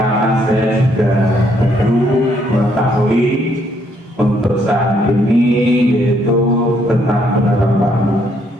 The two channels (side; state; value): both; normal; correlation 0.70